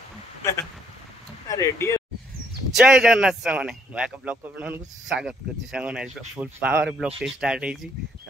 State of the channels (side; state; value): both; normal; correlation 0.67